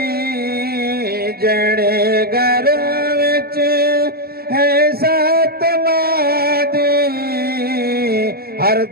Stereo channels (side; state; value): left; late; 0.45 ms